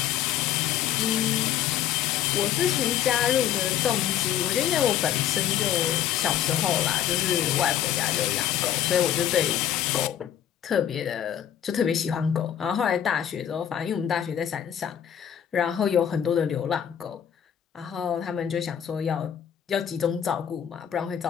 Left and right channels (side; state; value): right; quieter; 9.9 dB